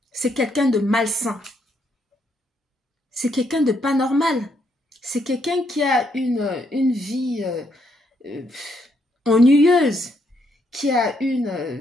C'est quelqu'un de malsain. C'est quelqu'un de pas normal. C'est quelqu'un qui a une vie ennuyeuse, qui a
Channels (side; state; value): both; normal; correlation 0.74